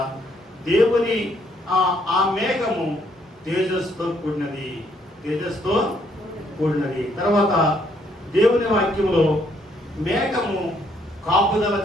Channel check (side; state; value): both; normal; correlation 0.70